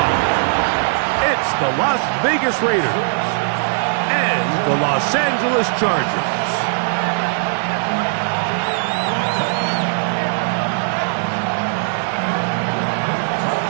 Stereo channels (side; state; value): left; silent; digital silence